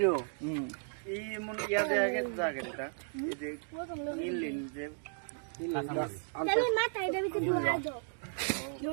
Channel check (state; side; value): silent; left; 55 dB below the other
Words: এই মন ইয়া দেয়া গেছে জায়গাটা এই যে ইনলিন যে তুমি মাথা এটা ভিতরে ঢুকা দাও